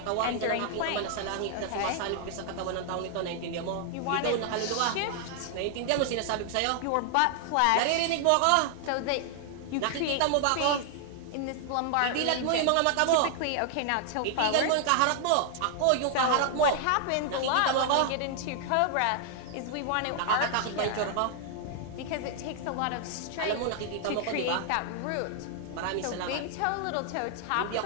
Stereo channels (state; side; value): different; both; correlation 0.00